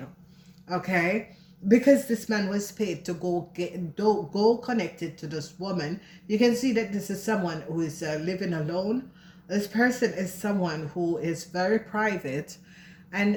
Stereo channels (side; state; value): both; identical; correlation 1.00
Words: Okay, because this man was paid to go connected to this woman. You can see that this is someone who is living alone. This person is someone who is very private,